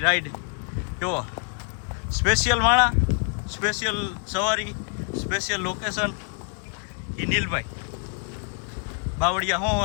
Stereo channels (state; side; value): quieter; right; 38.5 dB